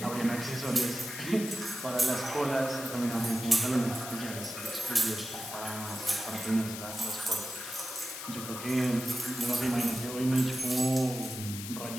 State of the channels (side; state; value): left; noise; hiss, 8 dB below the sound